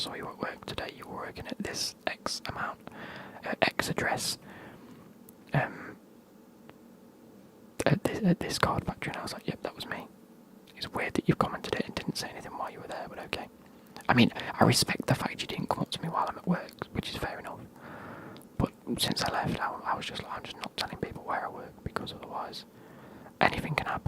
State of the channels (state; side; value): identical; both; correlation 1.00